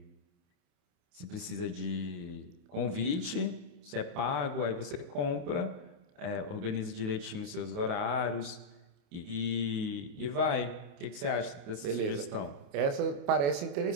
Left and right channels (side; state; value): left; late; 28 ms